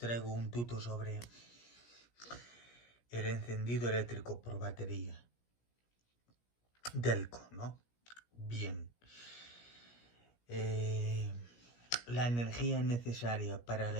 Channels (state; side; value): late; right; 17 ms